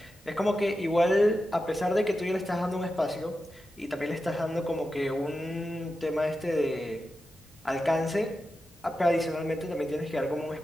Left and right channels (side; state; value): both; normal; correlation 0.91